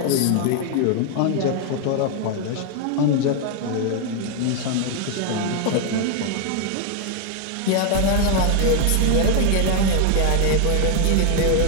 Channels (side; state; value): both; different; correlation 0.00